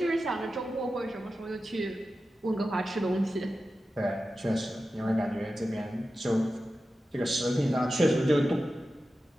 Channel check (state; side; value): normal; both; correlation 0.93